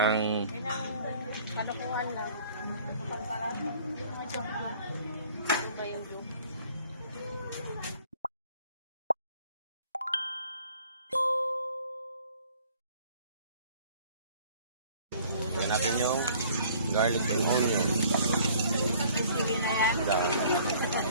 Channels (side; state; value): both; inverted; correlation -0.54